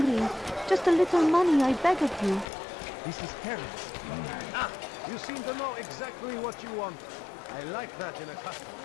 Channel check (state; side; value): drops out; right; at 2.5 s